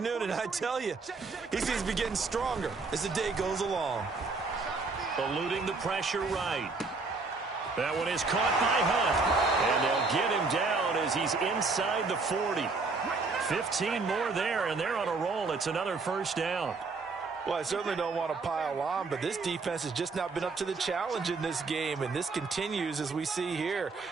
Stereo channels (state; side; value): quieter; left; 4.1 dB